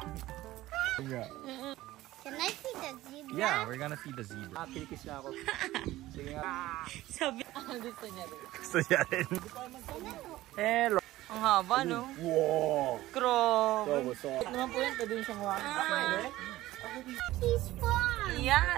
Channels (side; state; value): left; quieter; 16.3 dB